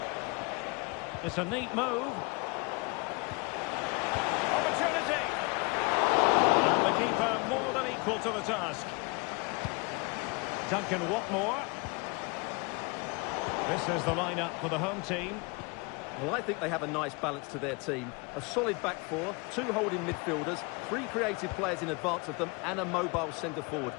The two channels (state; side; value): quieter; right; 28.5 dB